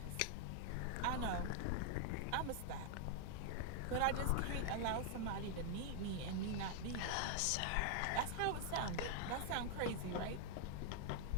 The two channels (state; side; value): different; both; correlation 0.00